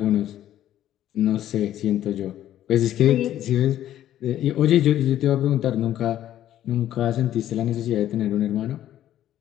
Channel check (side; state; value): right; quieter; 12.1 dB